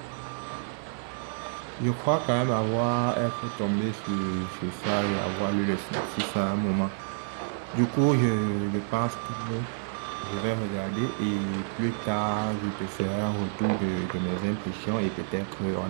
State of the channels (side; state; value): left; silent; digital silence